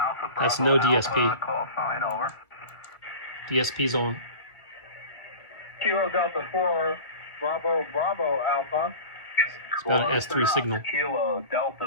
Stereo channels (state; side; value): late; right; 1.6 ms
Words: Bravo. That's no DSP. Alpha, call sign over. DSP's on. Kilo Delta 4, Bravo Bravo Alpha. It's about an S3 signal. Kilo